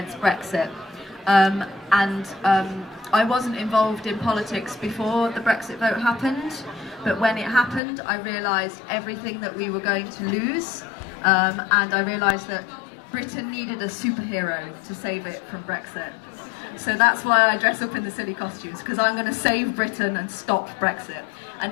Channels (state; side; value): drops out; right; at 7.8 s